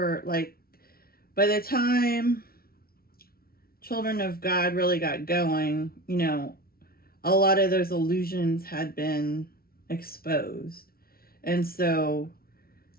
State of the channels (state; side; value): late; right; 0.44 ms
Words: like, by the time Children of God really got going, a lot of those illusions had been exposed. And so